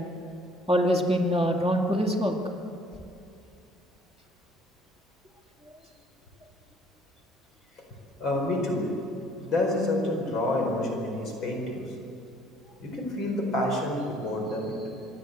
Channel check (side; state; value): both; normal; correlation 0.59